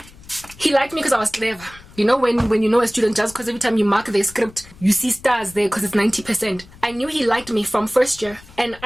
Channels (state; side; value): noise; left; rumble, 21 dB below the sound